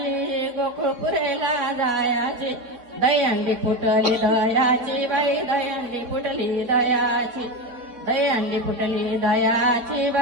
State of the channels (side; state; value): left; late; 4.1 ms